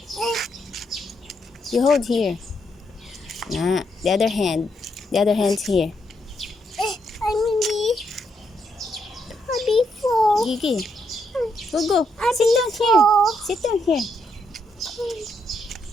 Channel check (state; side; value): normal; both; correlation 0.78